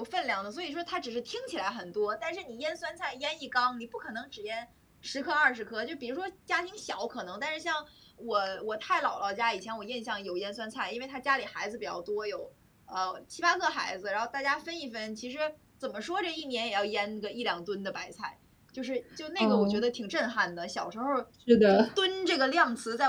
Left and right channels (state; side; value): identical; both; correlation 1.00